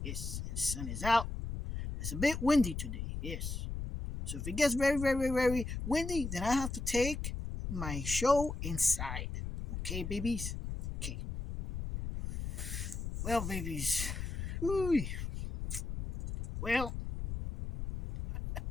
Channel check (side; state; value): left; noise; rumble, 5 dB below the sound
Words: Yes. The sun is out. It's a bit windy today. Yes. So if it gets very windy, then I have to take my show inside. Okay, babies? Okay. Well, babies. Ooh. Well,